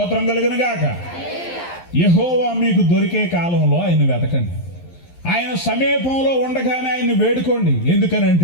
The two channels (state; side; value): late; right; 11 ms